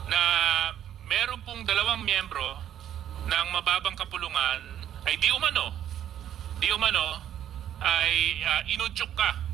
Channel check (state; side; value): quieter; left; 10.7 dB